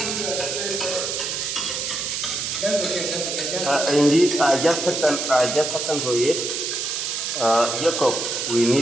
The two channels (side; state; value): right; noise; hiss, 2 dB below the sound